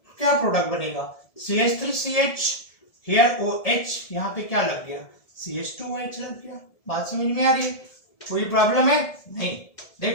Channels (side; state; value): right; late; 1.7 ms